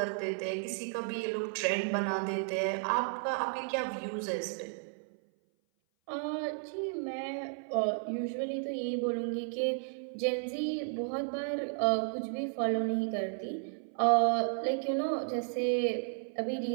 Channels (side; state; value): left; silent; 56 dB below the other